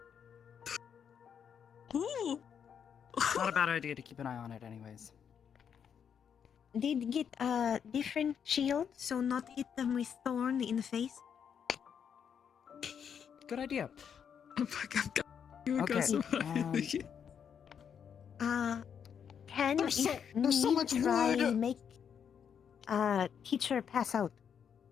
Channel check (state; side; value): quieter; right; 7.7 dB